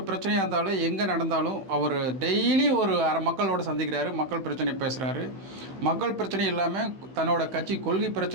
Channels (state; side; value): late; left; 15 ms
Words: பிரச்சனையாக இருந்தாலும் எங்கே நடந்தாலும் அவர் டெய்லி ஒரு மக்களோட சந்திக்கிறாரு, மக்கள் பிரச்சனை பேசுகிறாரு. மக்கள் பிரச்சனை இல்லாமல் தன்னோட கட்சி கொள்கை